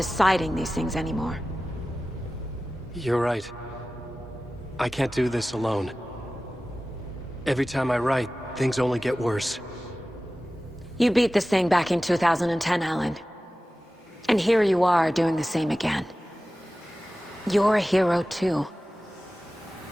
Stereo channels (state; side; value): normal; both; correlation 0.96